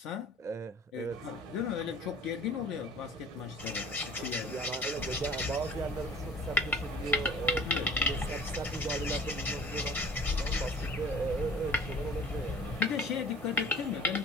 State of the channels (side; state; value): both; normal; correlation 0.47